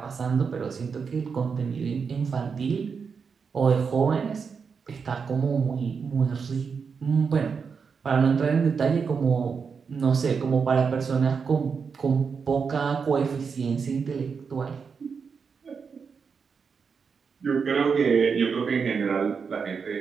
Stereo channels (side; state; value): left; quieter; 5.8 dB